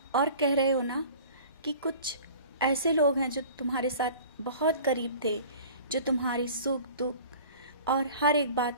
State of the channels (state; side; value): inverted; both; correlation -0.44